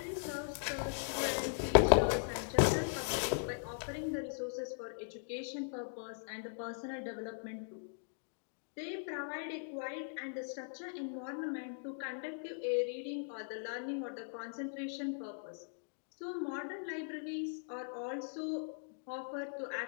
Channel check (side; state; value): right; silent; digital silence